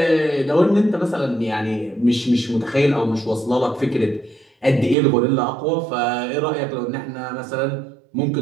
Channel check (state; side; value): drops out; left; at 5.0 s